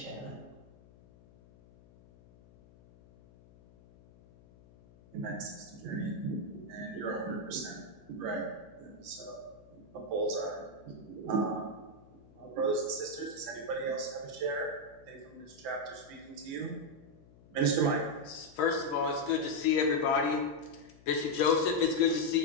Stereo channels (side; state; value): left; noise; hum, 24 dB below the sound